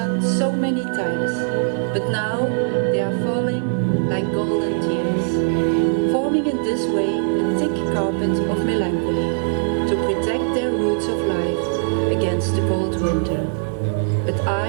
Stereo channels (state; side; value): silent; left; digital silence